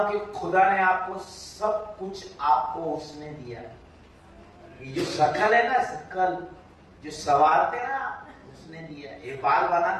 कि खुदा ने आपको सब कुछ, आपको उसने दिया। ये जो शकल है ना, शकल जो सवारते ना, उसने दिया। ये बाल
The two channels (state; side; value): identical; both; correlation 1.00